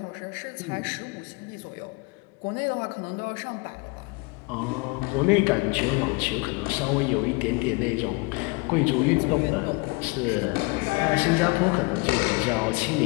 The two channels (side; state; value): right; quieter; 28.5 dB